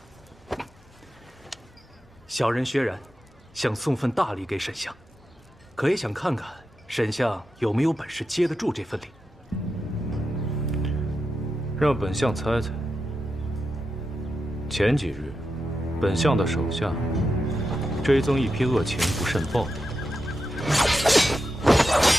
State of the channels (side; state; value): both; normal; correlation 0.88